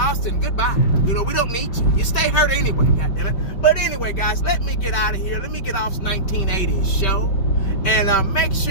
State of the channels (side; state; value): right; late; 5.2 ms